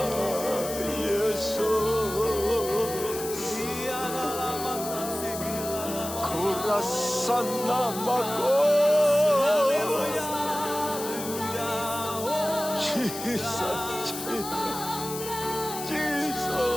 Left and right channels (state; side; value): noise; left; hiss, 9 dB below the sound